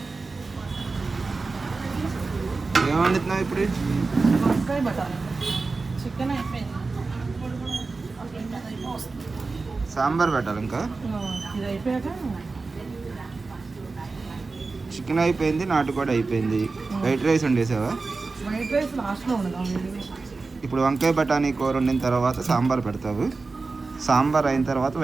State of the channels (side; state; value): left; quieter; 3.9 dB